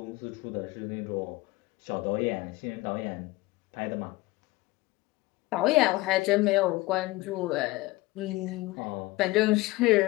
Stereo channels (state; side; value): quieter; right; 20.3 dB